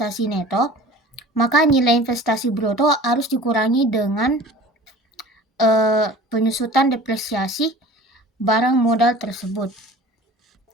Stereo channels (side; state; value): both; normal; correlation 0.43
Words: neto, maka nilai investasi bruto harus dikurangi dengan penyusutan depresiasi barang modal tersebut.